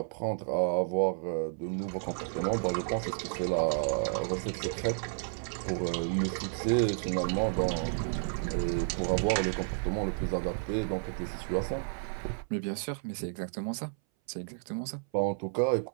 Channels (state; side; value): silent; left; 57 dB below the other